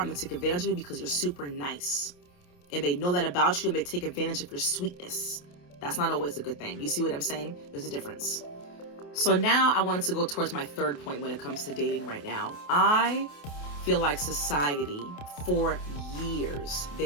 gonna take advantage of you because you're super nice. And they know that about you and they take advantage of your sweetness. That's not always a good thing. You see what I'm saying? There's a difference. So now I wanted to go towards my third point when it comes to dating right now. I feel like society, for years,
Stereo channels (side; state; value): right; late; 28 ms